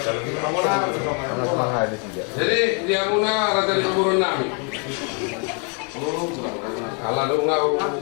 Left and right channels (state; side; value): quieter; right; 36.0 dB